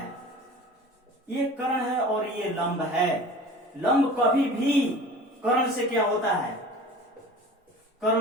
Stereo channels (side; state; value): both; normal; correlation 0.41